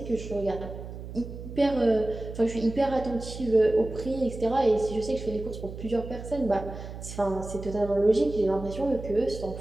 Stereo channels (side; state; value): right; noise; hum, 11 dB below the sound